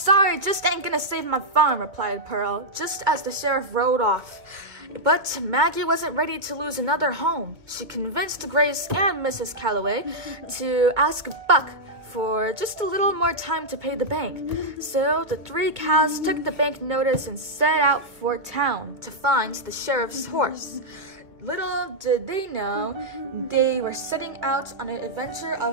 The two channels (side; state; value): left; late; 2.5 ms